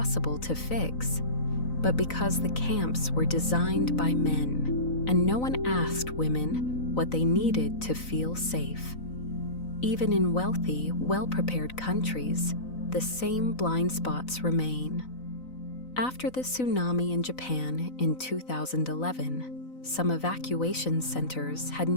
to fix, but because the camps were designed by men, and no one asked women what they needed to feel safe. Even in wealthy, well-prepared countries, the same blind spots remain. After the tsunami in Japan in 2011, some evacuation centers had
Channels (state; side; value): late; right; 4.0 ms